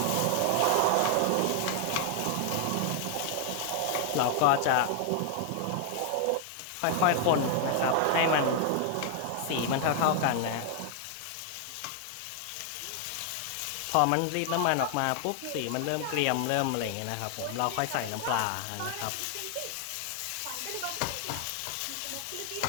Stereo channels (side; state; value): both; different; correlation 0.00